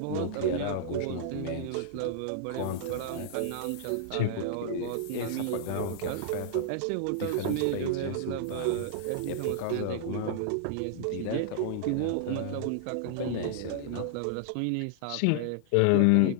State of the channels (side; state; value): both; different; correlation -0.01